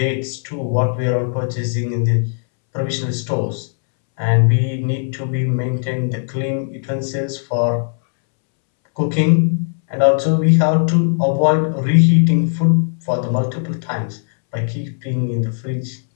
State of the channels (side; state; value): right; silent; 67 dB below the other